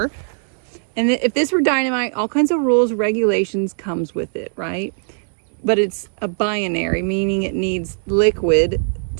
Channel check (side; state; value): left; silent; 66 dB below the other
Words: And if this were dynamite, all kinds of rules, regulations comes with it, right? But it's a binary, meaning it needs liquid